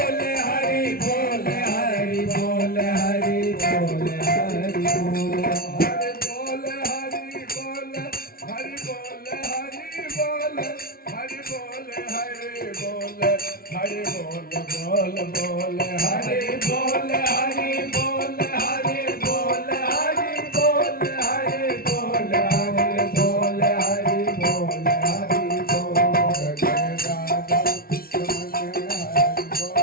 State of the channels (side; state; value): right; late; 0.43 ms